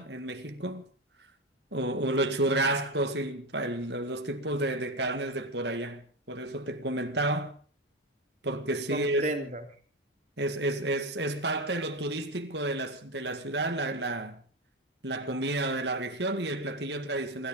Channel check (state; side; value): normal; both; correlation 0.15